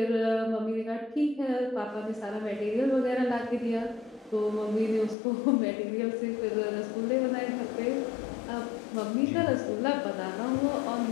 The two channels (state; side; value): drops out; right; at 5.2 s